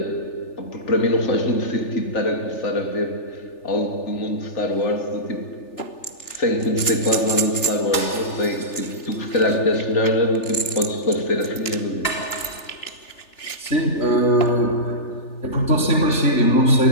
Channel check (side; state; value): right; late; 3.4 ms